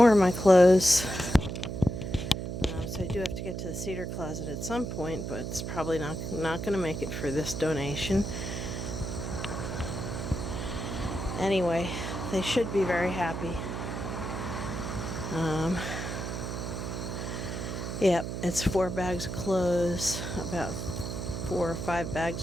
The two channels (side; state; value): right; noise; hum, 4 dB below the sound